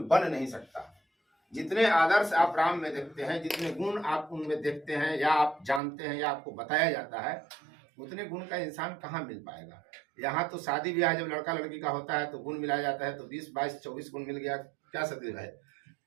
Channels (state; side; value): drops out; left; at 5.8 s